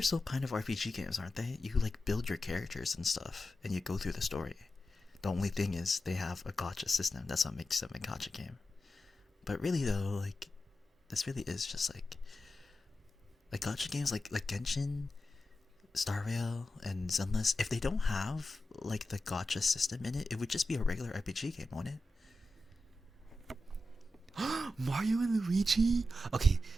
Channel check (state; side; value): normal; both; correlation 0.91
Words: still kind of RPG games, aren't they? You like build your characters and stuff, and you go through the story. The only thing is they have a gotcha system. That's what makes them a gotcha game. But really though, like this really is just like gotcha games like Genshin, Star Rail, and Zenless. If they don't have like the gotcha system in it, it would just be a regular RPG game, wouldn't it? Mario and Luigi. Okay,